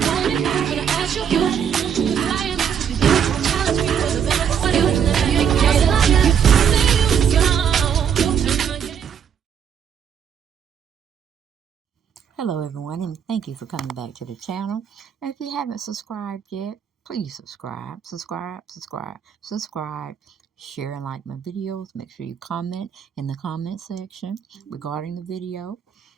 I want it, I'm gonna ask you. Cause I am to be there. Challenge me for the better. What do you let me cater to you? Hello everyone, and thank you for coming back to the channel. And if you haven't subscribed yet, please subscribe, share and like my videos. Make sure you comment in the comment section regarding the video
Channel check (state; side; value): quieter; left; 8.0 dB